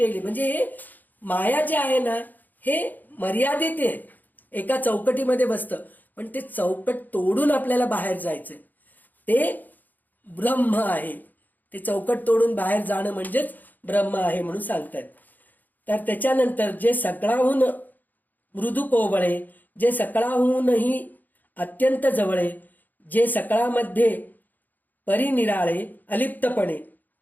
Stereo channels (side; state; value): right; late; 0.085 ms